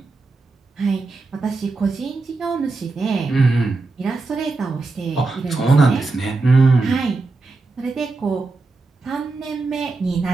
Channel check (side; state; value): left; quieter; 3.7 dB